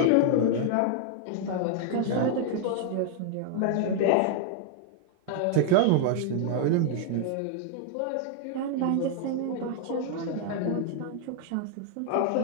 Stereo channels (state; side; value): different; both; correlation 0.00